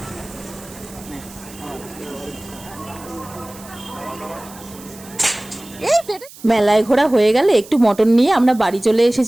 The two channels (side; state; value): right; noise; hiss, 19 dB below the sound